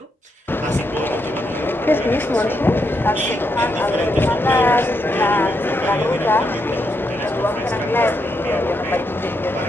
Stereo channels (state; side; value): normal; both; correlation 0.80